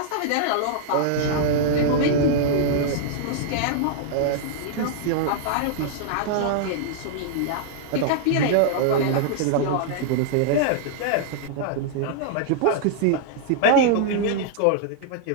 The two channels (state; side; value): different; both; correlation -0.01